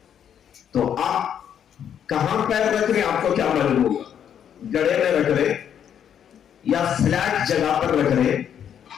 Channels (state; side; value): quieter; right; 8.9 dB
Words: تو آپ کہاں پیر رکھ رہے ہیں آپ کو کیا معلوم ہوگا؟ گڑھے میں رکھ رہے یا فلیٹ جگہ پر رکھ رہے